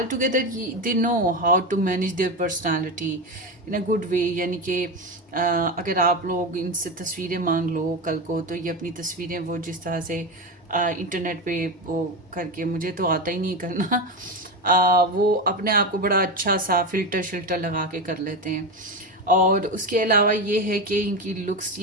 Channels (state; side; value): normal; both; correlation 0.18